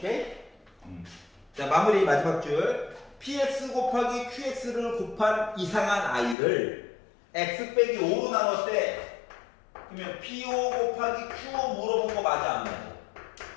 마무리 마지막 줄. px 곱하기 qx를 곱한 이상한 i를 x 빼기 5로 나눴대. 그러면 p5 곱하기 q5 물어본 거 맞아 안 맞아?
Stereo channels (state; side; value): drops out; right; at 6.4 s